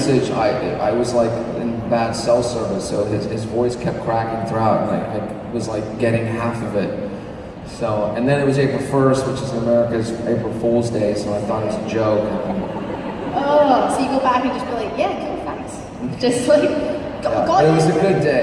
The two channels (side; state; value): both; identical; correlation 1.00